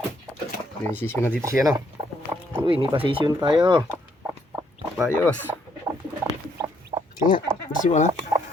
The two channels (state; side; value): normal; both; correlation 0.70